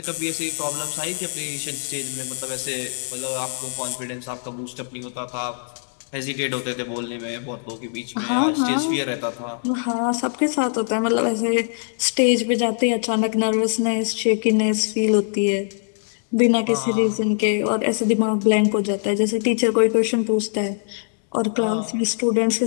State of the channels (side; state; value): right; silent; 64 dB below the other